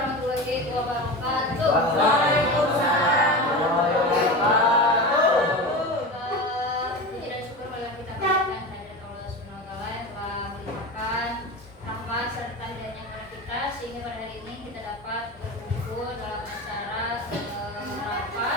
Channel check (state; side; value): normal; both; correlation 0.26